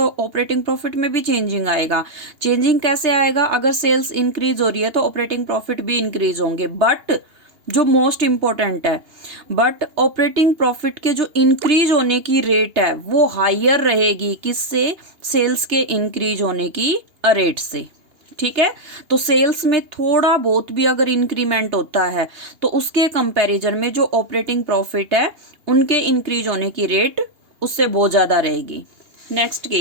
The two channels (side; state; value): left; late; 2.8 ms